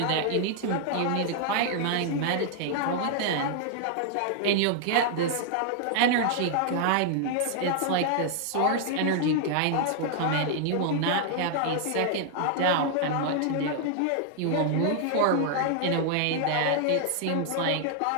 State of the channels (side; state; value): both; different; correlation 0.00